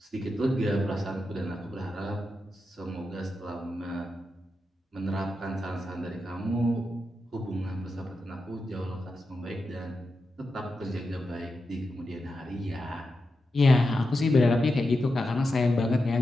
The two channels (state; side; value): normal; both; correlation 0.89